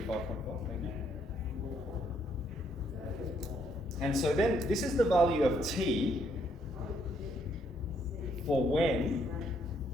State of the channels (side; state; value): both; normal; correlation 0.71